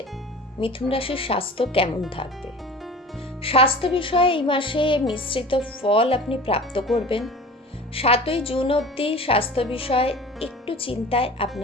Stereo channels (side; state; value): both; normal; correlation 0.39